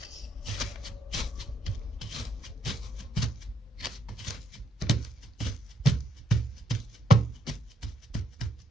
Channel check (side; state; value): both; normal; correlation 0.73